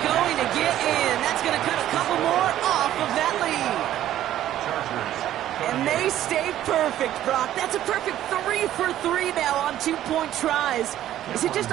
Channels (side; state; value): left; quieter; 12.5 dB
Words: going to get in. That's going to cut a couple more off of that lead. And they stay perfect, Brock. That's a perfect 3 for 3 now on 2-point tries. Is it just